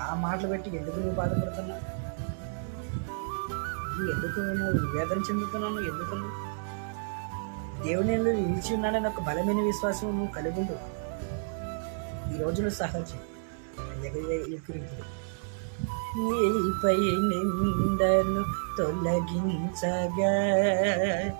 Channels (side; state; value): left; silent; 58 dB below the other